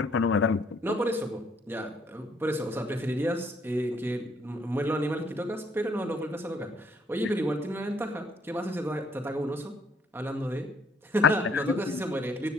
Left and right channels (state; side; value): normal; both; correlation 0.65